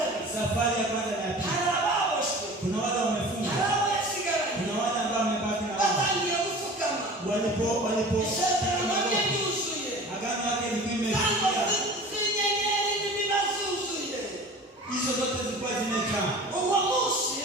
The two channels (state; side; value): normal; both; correlation 0.40